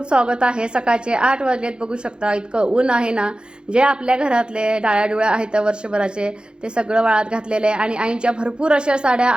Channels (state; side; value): late; left; 0.050 ms